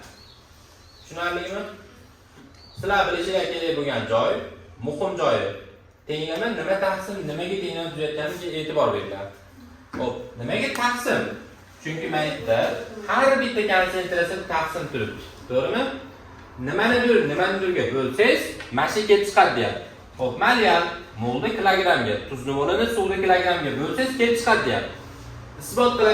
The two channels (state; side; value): identical; both; correlation 1.00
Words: Tushunarlimi? Sizlar bilishinglar kerak bo'lgan joy muhim joyi. Tenglama nima taqsim, nimaga tenglama tuzayotganiga e'tibor beringlar. Xo'p, nimaga taqsim? Chunki maytda har bitta konsentratsiya taqsim turibdi. To'g'rimi? Nimanidirga bo'lsangiz, mana shu kelib chiqadi deyapti. Xo'p, malyal molda kilogrammga, tuzli molini suvda kilogrammga bo'lsangiz kelib chiqadi deyapti. Isbot